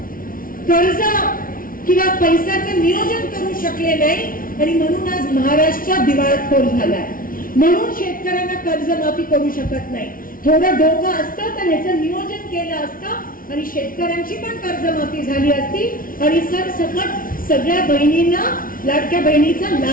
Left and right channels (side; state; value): right; late; 0.41 ms